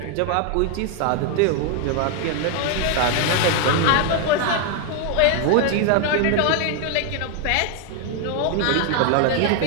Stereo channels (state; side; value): different; both; correlation 0.01